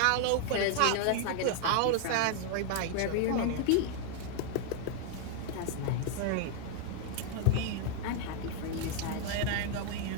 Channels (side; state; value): both; different; correlation 0.00